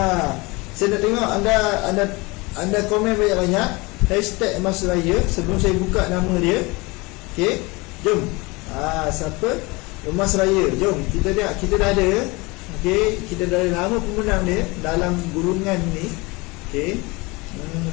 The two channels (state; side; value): quieter; right; 24.9 dB